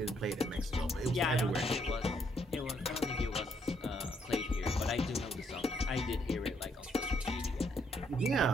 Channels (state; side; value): normal; both; correlation 0.72